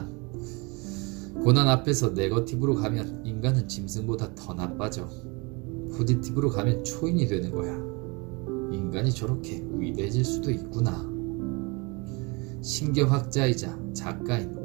고난 앞에서 네거티브로 가면 인간은 짐승보다 더 나빠져. 포지티브로 가면 초인이 되는 거야. 인간이 저렇게 위대해질 수도 있구나. 신경학자이자 작가인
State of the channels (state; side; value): quieter; left; 28.5 dB